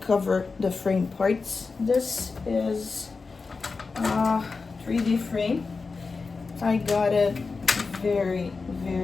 the frame parts, this is a 3D frame. I got it very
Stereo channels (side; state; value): right; quieter; 4.4 dB